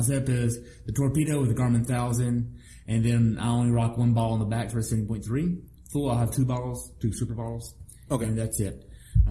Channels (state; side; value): identical; both; correlation 1.00